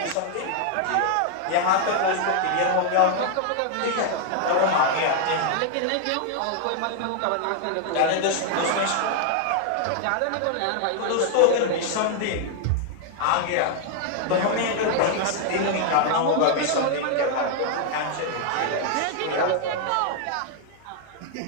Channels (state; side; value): different; both; correlation 0.00